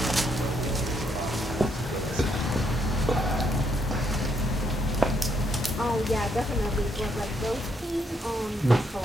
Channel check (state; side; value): normal; both; correlation 0.74